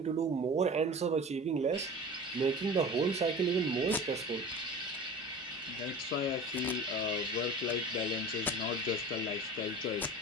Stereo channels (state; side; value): normal; both; correlation 0.37